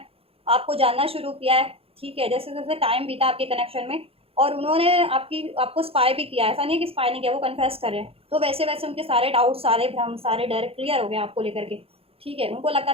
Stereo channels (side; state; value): left; late; 0.28 ms